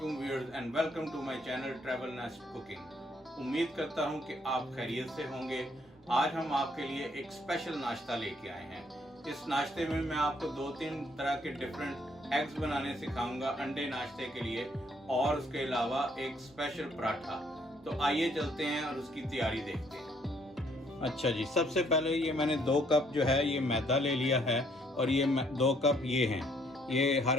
viewers and welcome to my channel travel नास्ट cooking. उम्मीद करता हूं कि आप खैरियत से होंगे। आज हम आपके लिए एक स्पेशल नाश्ता लेके आए हैं। इस नाश्ते में मैं आपको 2-3 तरह के डिफरेंट एग्स बनाने सिखाऊंगा अंडे नाश्ते के लिए, और उसके अलावा एक स्पेशल पराठा। तो आइए चलते हैं और उसकी तैयारी देखते हैं। अच्छा जी, सबसे पहले ये मैंने 2 कप जो है ये मैदा ले लिया है, और ये 2 कप ये हैं। ये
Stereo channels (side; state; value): both; normal; correlation 0.67